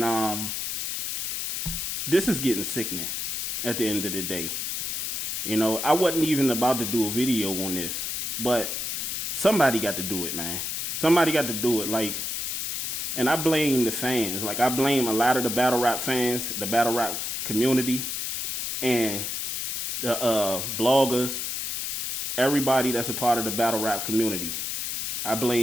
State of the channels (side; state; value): left; noise; hiss, 2 dB below the sound